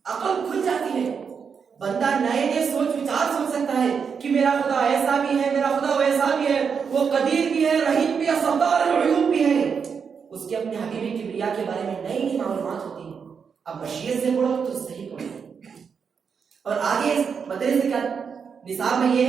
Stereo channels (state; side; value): quieter; left; 6.3 dB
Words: عقل کھل جاتی ہے. بندہ نئے نئے سوچ وچار سوچ سکتا ہے کہ میرا خدا ایسا بھی ہے، میرا خدا ویسا بھی ہے، وہ قدیر بھی ہے، رحیم بھی ہے، ستار العیوب بھی ہے. اس کے اپنے حبیب کبریا کے بارے میں نئی نئی معلومات ہوتی ہیں. اب مشیت سے پڑھو تو صحیح پڑھو. اور آگے مدرسے کا نصاب میں یہ